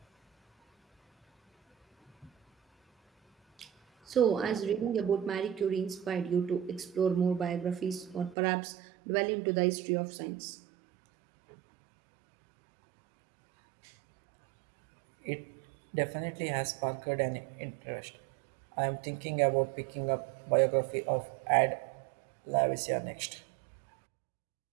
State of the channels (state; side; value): drops out; left; at 8.3 s